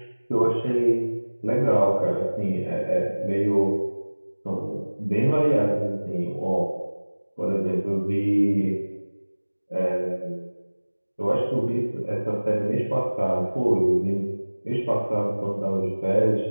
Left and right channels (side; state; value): both; inverted; correlation -1.00